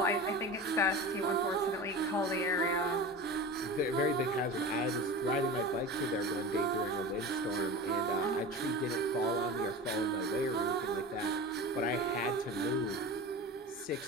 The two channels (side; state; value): both; normal; correlation 0.31